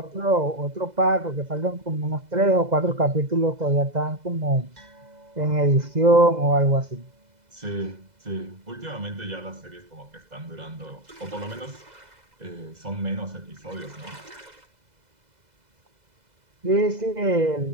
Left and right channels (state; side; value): late; left; 2.0 ms